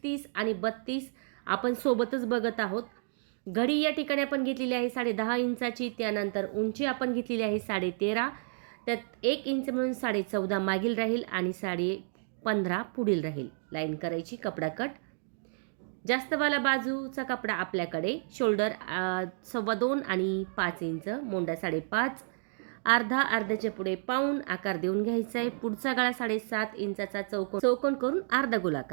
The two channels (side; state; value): left; silent; digital silence